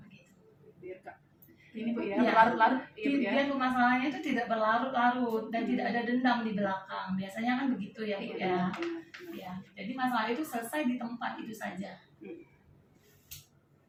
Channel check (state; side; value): identical; both; correlation 1.00